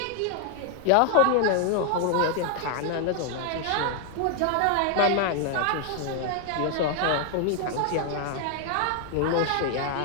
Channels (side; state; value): both; different; correlation 0.00